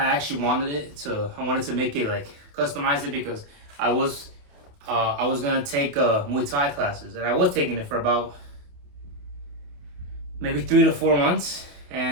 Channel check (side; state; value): left; late; 28 ms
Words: actually wanted to make it like customize it because I was gonna take Muay Thai classes, and I was taking it for about maybe 3 to 4 months,